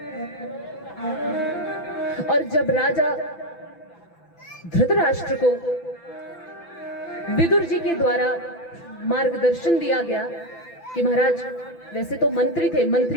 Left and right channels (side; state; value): right; late; 5.9 ms